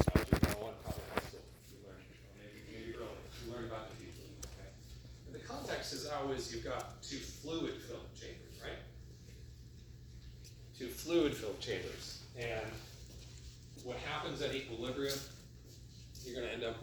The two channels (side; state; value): both; identical; correlation 1.00